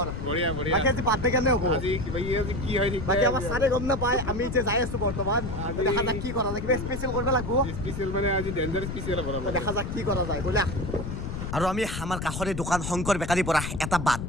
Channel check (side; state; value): left; noise; rumble, 5 dB below the sound